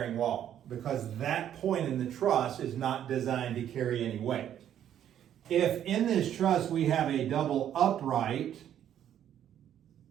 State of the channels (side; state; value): left; quieter; 10.4 dB